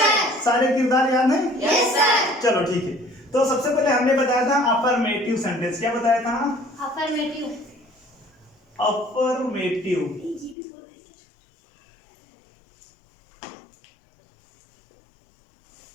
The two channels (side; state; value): right; drops out; at 10.6 s